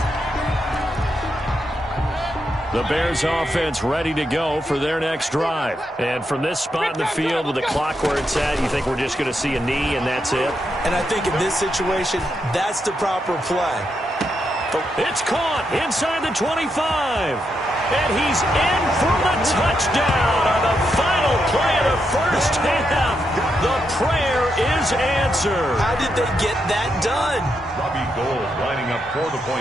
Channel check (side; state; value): both; normal; correlation 0.82